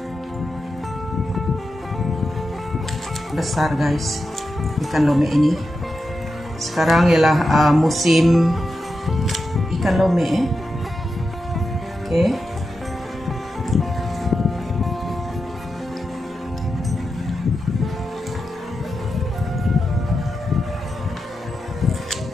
Besar guys ikan lomek ini. Sekarang ialah musim ikan lomek Okey.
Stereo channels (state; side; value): normal; both; correlation 0.89